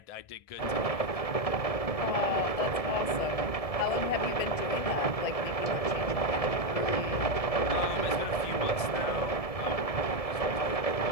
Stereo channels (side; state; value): right; late; 1.7 ms